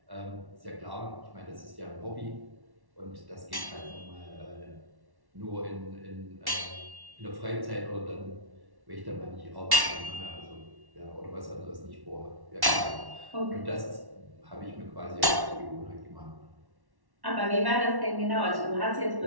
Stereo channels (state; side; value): late; left; 1.1 ms